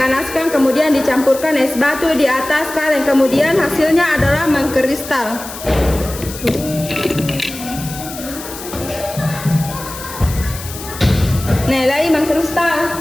kemudian dicampurkan es batu di atas kaleng, kemudian hasilnya adalah mengkristal. Nah, lagi mengkristal.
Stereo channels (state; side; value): noise; left; hiss, 12 dB below the sound